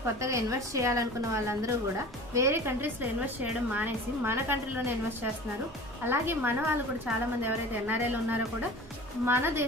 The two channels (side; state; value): both; normal; correlation 0.39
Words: కొత్తగా ఇన్వెస్ట్ చేయాలనుకున్న వాళ్ళందరూ కూడా వేరే కంట్రీస్లో ఇన్వెస్ట్ చేయడం మానేసి మన కంట్రీలోనే ఇన్వెస్ట్ చేస్తున్నారు. అలాగే మన వాళ్ళు కూడా చాలామంది ఎవరైతే ఎన్ఆర్ఐలు ఉన్నారో కూడా మన